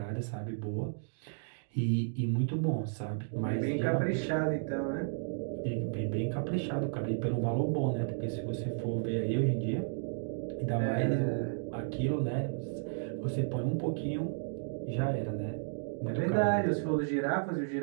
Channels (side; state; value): left; silent; digital silence